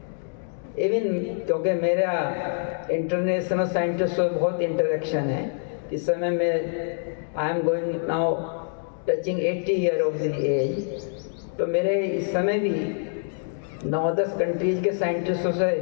इवन क्योंकि मेरा इंटरनेशनल साइंटिस्ट से बहुत इंटरेक्शन है. इस समय में I am going now touching 80 year of the age. तो मेरे इस समय भी 9-10 कंट्रीज के साइंटिस्टों से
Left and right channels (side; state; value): right; silent; digital silence